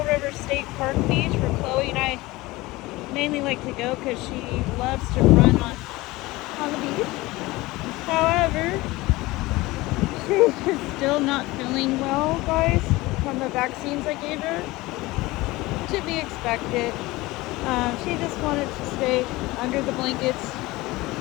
River State Park Beach, where Chloe and I mainly like to go because she loves to run on the beach. However, she is still not feeling well, guys, from the vaccines I gave her. To be expected. She just wanted to stay under the blankets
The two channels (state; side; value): quieter; right; 20.3 dB